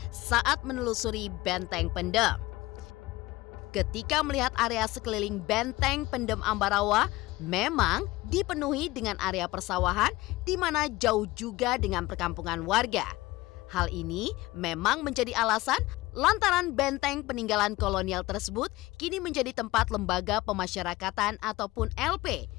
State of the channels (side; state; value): right; quieter; 19.4 dB